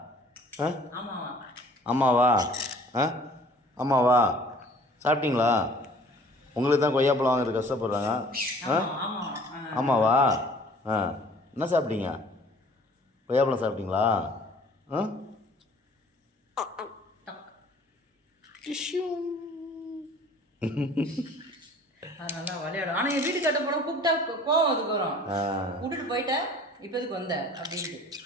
ஆமாவா? ஆமாவா? சாப்பிட்டீங்களா? உங்களுக்கு தான் கொய்யாப்பழம் வாங்குறது கஷ்டப்படுறாங்க. ஆமாவா? என்ன சாப்பிட்டீங்க? கொய்யாப்பழம் சாப்பிட்டீங்களா? நல்லா விளையாடும். ஆனால் என் வீட்டு கட்ட போனால் கூப்பிட்டா கோவம் அதுக்கு வரும். விட்டுட்டு போயிட்டேன், இப்போ எதுக்கு வந்த அப்படின்ட்டு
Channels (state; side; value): normal; both; correlation 0.51